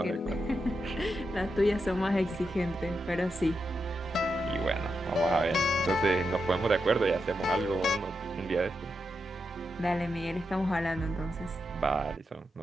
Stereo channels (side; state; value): both; normal; correlation 0.86